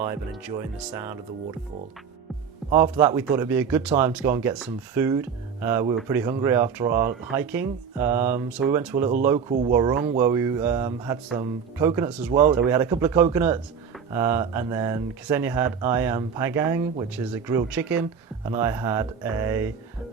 and enjoying the sound of the waterfall. After that, we thought it'd be a good time to go and get some food. We were pretty hungry after our hiking, so we went to a little local warung where we had some coconuts as well. So we had a couple of coconuts, and then Ksenia had ayam panggang, which is a grilled chicken, and I had a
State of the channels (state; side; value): quieter; left; 6.7 dB